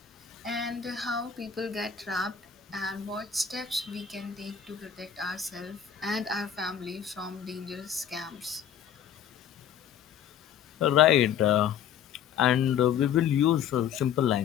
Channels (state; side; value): quieter; right; 8.7 dB